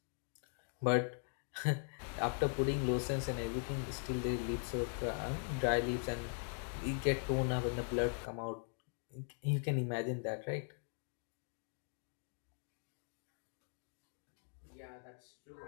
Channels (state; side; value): silent; right; 51 dB below the other